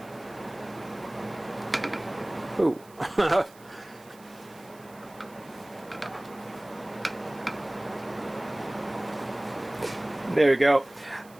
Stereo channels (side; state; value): right; noise; hiss, 25 dB below the sound